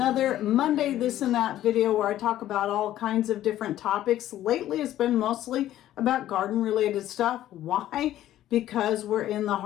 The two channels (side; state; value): right; quieter; 13.1 dB